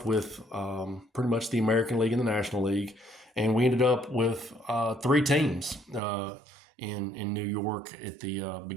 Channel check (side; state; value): left; drops out; at 6.0 s